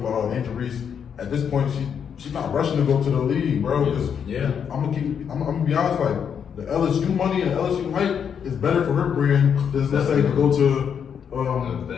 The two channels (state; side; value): quieter; right; 7.6 dB